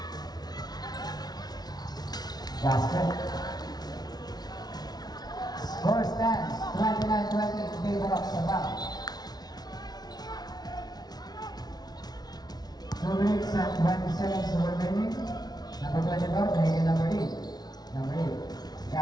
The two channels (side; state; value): right; late; 0.19 ms